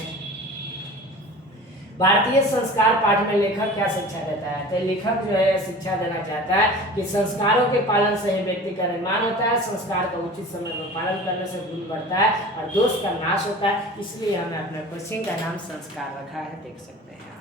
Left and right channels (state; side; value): normal; both; correlation 0.39